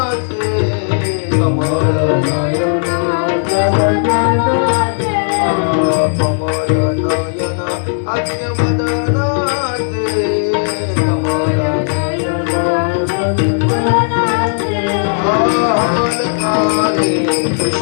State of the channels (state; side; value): silent; right; digital silence